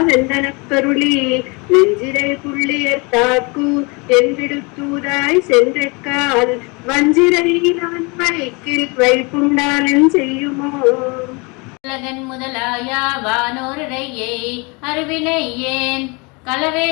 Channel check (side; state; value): right; quieter; 29.2 dB